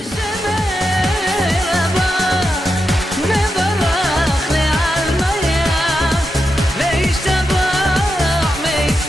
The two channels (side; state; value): both; normal; correlation 0.87